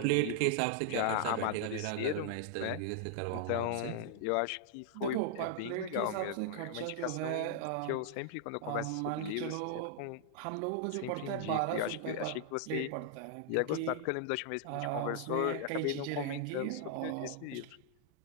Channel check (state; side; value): different; both; correlation -0.01